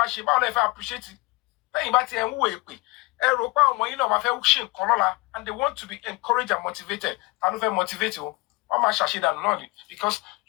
ṣe báwo lẹ fẹ́ appreciate lẹ́yìn bá ti ẹ̀ ń wò èpè ẹ rò pé àwọn ọmọ yín náà máa fẹ́ ṣe nǹkan lọ́la and they want to be encouraged and motivated ta ló fẹ́ motivate o wọ́n máa ṣàṣedànù náà ni because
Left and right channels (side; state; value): right; quieter; 23.9 dB